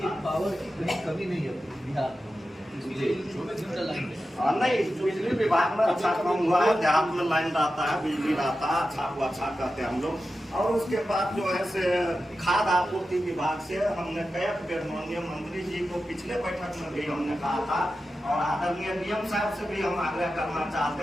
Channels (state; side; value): normal; both; correlation 0.92